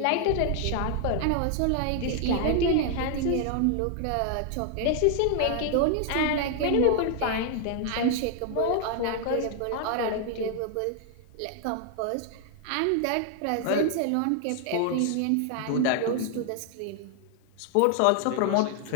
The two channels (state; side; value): different; both; correlation 0.00